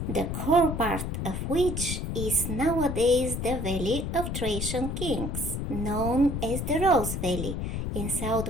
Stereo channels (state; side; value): noise; left; rumble, 3 dB below the sound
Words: the core part of which is nowadays the Valley of Thracian Kings, known as the Rose Valley in